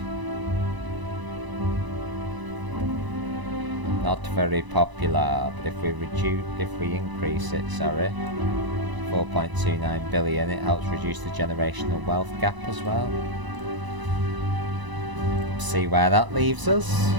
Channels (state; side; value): late; left; 1.0 ms